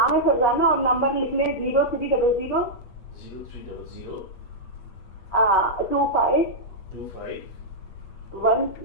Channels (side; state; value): right; late; 8.3 ms